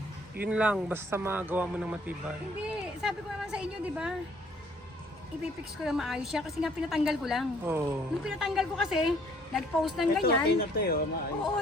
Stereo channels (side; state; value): both; normal; correlation 0.61